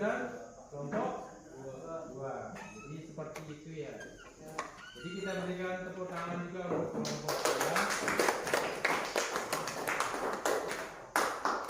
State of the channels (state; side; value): identical; both; correlation 1.00